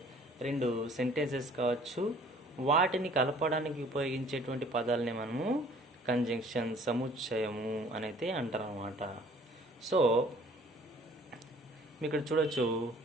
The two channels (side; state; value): both; normal; correlation 0.54